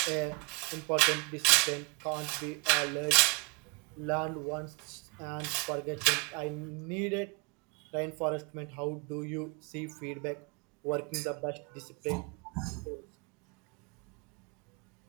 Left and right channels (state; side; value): quieter; left; 32.6 dB